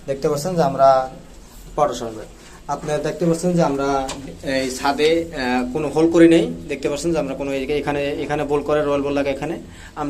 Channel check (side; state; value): both; identical; correlation 1.00